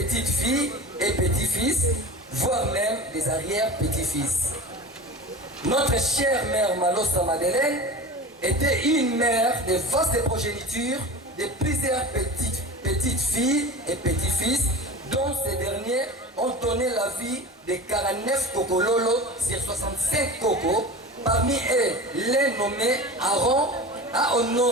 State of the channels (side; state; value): both; normal; correlation 0.33